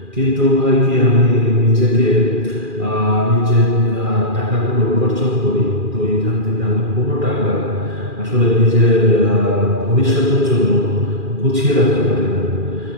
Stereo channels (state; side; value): late; left; 2.4 ms